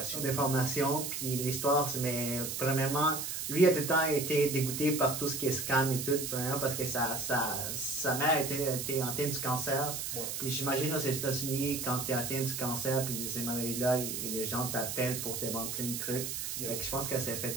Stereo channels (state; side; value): noise; right; hiss, 4 dB below the sound